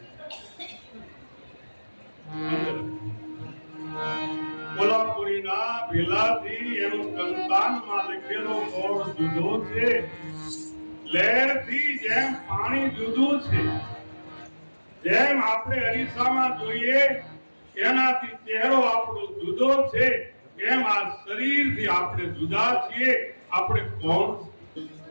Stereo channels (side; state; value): both; inverted; correlation -1.00